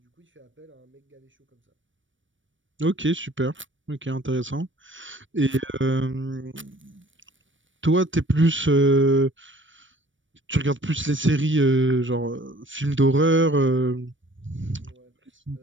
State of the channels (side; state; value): left; late; 0.56 ms